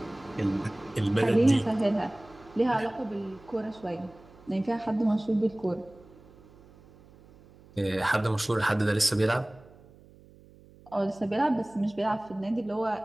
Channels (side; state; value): right; noise; hum, 24 dB below the sound